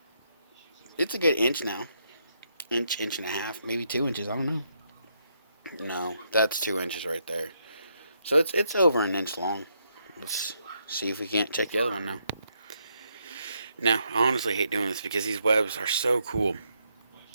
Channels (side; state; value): both; inverted; correlation -0.77